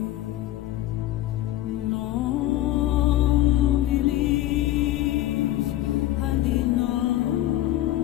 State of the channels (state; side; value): quieter; right; 14.4 dB